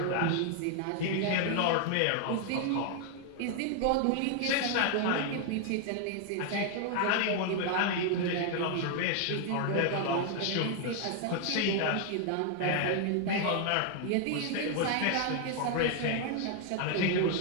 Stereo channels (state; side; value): different; both; correlation 0.00